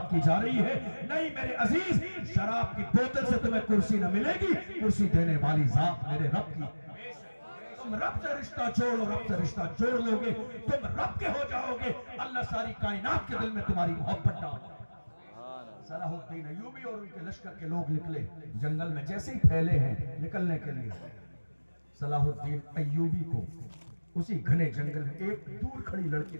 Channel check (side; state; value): both; inverted; correlation -1.00